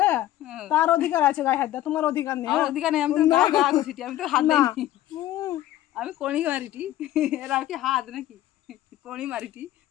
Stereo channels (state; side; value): quieter; right; 13.9 dB